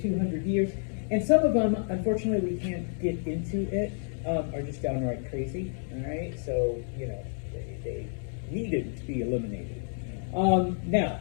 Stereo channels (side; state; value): right; silent; 58 dB below the other